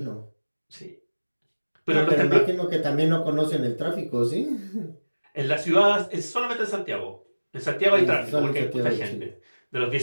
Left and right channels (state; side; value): inverted; both; correlation -1.00